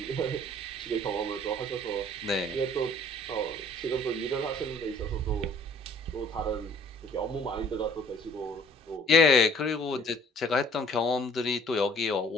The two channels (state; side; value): normal; both; correlation 0.55